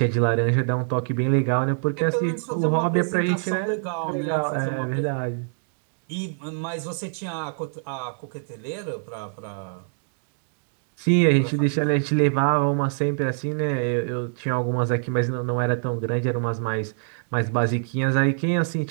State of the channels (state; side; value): silent; left; digital silence